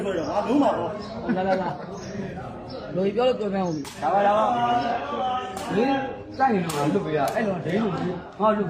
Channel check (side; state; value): both; identical; correlation 1.00